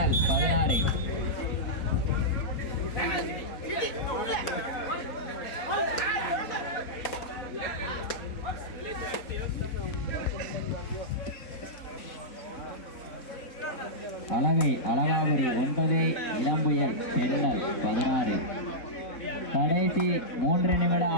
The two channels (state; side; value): late; right; 4.4 ms